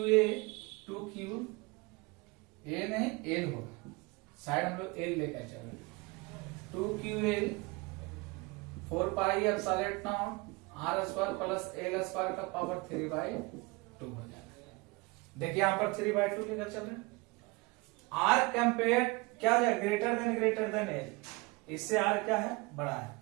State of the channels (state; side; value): quieter; left; 26.0 dB